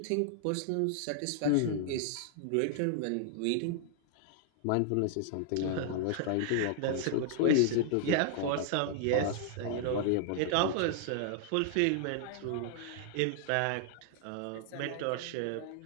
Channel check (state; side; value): different; both; correlation 0.00